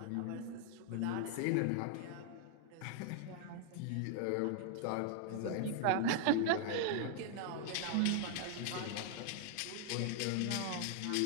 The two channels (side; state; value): both; different; correlation 0.00